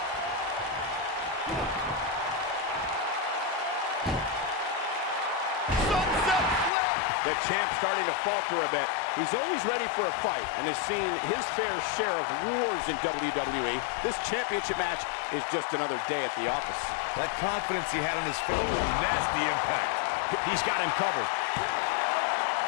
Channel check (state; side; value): drops out; right; at 6.7 s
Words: The champ's starting to falter a bit. He's always ready for a fight and has seen his fair share of wars in WWE. This championship match is just another day at the office. That confidence he had on his face, nasty impact. He's got him covered.